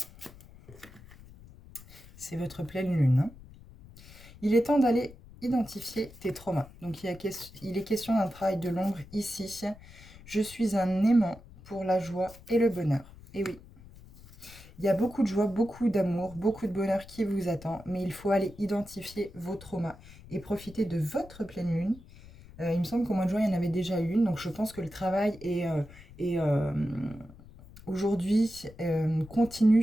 C'est votre pleine lune. Hein. Il est temps d'aller identifier tes traumas. Donc, il est question d'un travail de l'ombre ici. Je suis un aimant pour la joie et le bonheur. Et oui, il y a beaucoup de joie, beaucoup d'amour, beaucoup de bonheur qui vous attend, mais il faut aller identifier vos traumas et profiter de votre pleine lune. Il me semble qu'au mois de juin, il y en avait déjà une, donc je pense que le travail est aujourd'hui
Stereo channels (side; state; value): left; noise; rumble, 20 dB below the sound